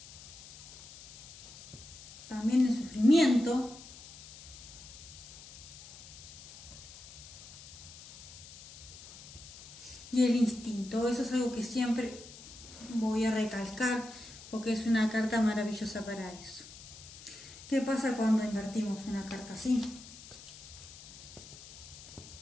También el sufrimiento. Y el instinto, eso es algo que siempre voy a recalcar porque es una carta maravillosa para eso. ¿Qué pasa cuando invertimos una carta así?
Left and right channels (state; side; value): noise; left; hiss, 17 dB below the sound